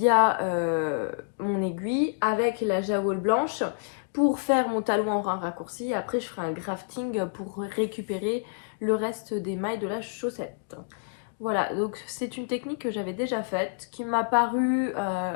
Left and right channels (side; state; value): right; silent; digital silence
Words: mon aiguille avec la jaoule blanche pour faire mon talon en raccourci. Après je ferai un grafting pour récupérer le reste des mailles de la chaussette. Voilà, donc c'est une technique que j'avais déjà faite, qui m'a paru